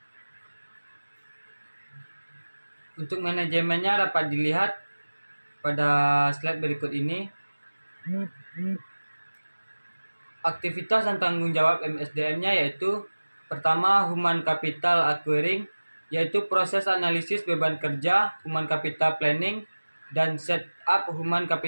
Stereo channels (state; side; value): inverted; both; correlation -1.00